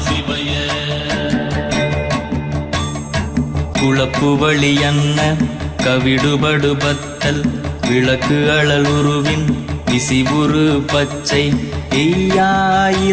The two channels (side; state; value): both; identical; correlation 1.00